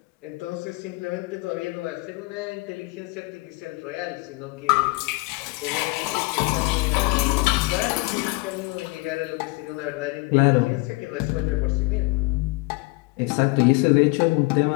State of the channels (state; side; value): quieter; right; 24.9 dB